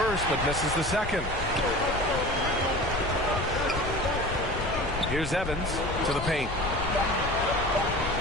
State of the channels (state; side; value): noise; left; rumble, 7 dB below the sound